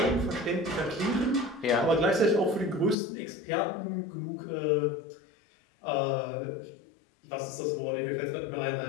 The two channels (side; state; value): right; drops out; at 3.0 s